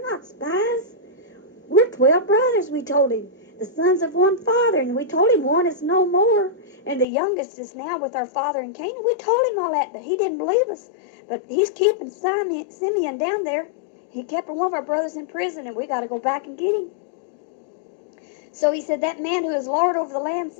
not spies. We're 12 brothers, we told him, the sons of one father. And we told him one is no more, and the youngest is now with our father in Canaan. We told him all that, but he didn't believe us. But he's keeping Simeon down there. He kept one of our brothers in prison, and we got to go back and get him. So he said, that man who is Lord over the land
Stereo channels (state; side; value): drops out; right; at 7.1 s